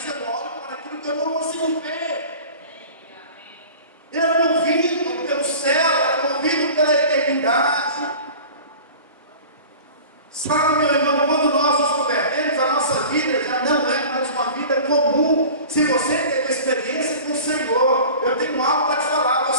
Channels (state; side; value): inverted; both; correlation -0.40